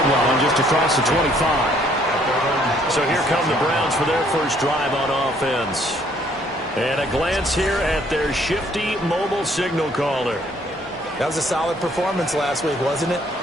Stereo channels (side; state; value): both; normal; correlation 0.64